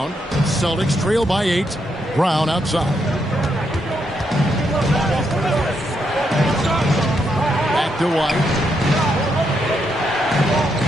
Celtics trail by 8. Brown outside. To White.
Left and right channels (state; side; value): normal; both; correlation 0.79